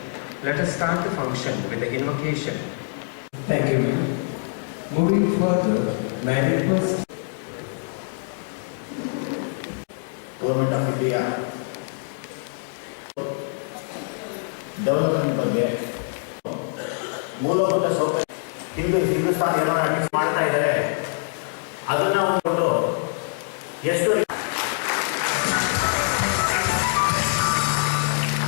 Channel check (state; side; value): silent; right; digital silence